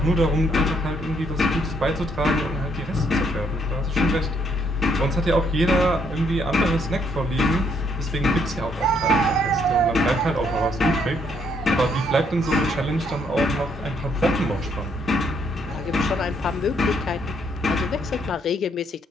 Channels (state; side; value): normal; both; correlation 0.71